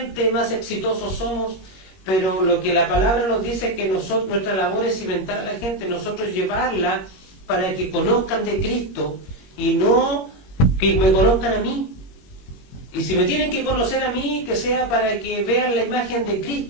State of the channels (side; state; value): right; late; 21 ms